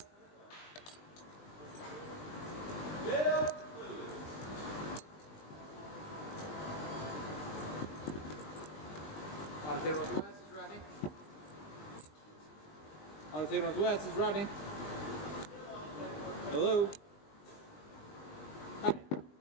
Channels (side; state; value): right; late; 20 ms